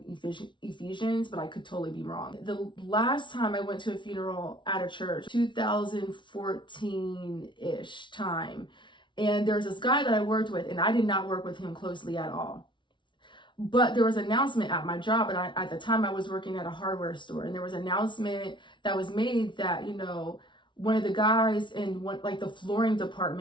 Ephesians, but I could totally be wrong. The last time I went to a funeral at a church, 2014-ish time, and there's this guy that I worked with, and I did not work with him closely at all. But there was an announcement at my job, and at the time I was working at a hardware store, and there was an announcement that was made that, you know, one of the guys in like the flooring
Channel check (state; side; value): late; right; 0.24 ms